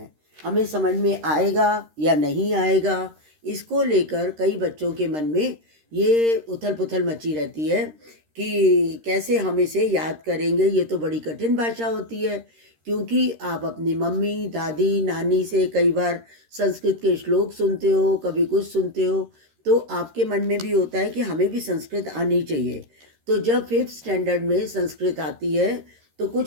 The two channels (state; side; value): late; left; 13 ms